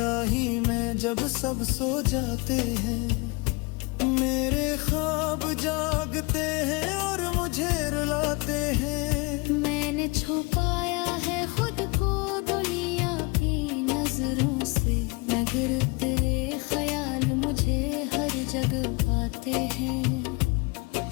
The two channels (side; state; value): right; quieter; 27.7 dB